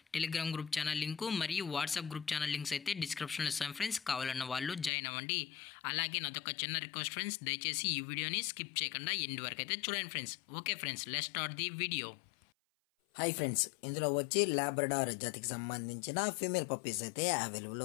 టెలిగ్రామ్ గ్రూప్ ఛానల్ లింకు మరియు వాట్సాప్ గ్రూప్ ఛానల్ లింక్స్ అయితే డిస్క్రిప్షన్లో ఇస్తాం ఫ్రెండ్స్. కావాలన్న వాళ్ళు జాయిన్ అవ్వండి. అలాగే నాదొక చిన్న రిక్వెస్ట్ ఫ్రెండ్స్, దయచేసి ఈ వీడియోని స్కిప్ చేయకుండా ఎండ్ వరకు అయితే చూడండి friends. Okay friends, let's start the video. Hi friends, ఇందులో వచ్చి లాబ్రడార్ జాతికి సంబంధించిన ఫీమేల్ పప్పీస్ అయితే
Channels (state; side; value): drops out; right; at 4.9 s